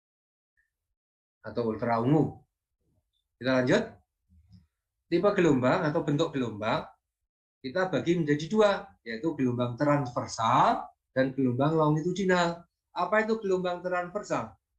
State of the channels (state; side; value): identical; both; correlation 1.00